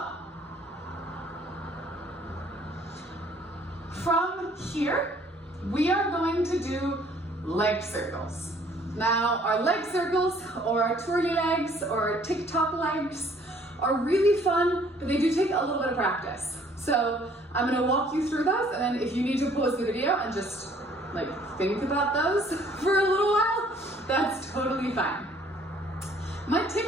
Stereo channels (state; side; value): normal; both; correlation 0.59